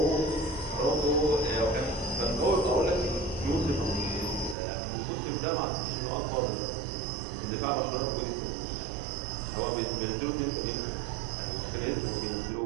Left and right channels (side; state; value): left; drops out; at 4.5 s